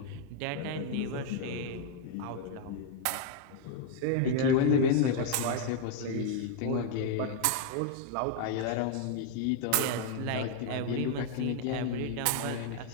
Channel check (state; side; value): different; both; correlation 0.00